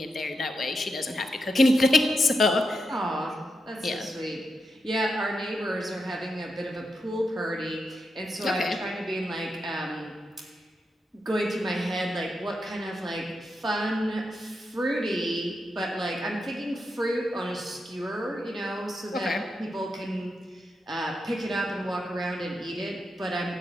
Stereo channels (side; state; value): both; normal; correlation 0.85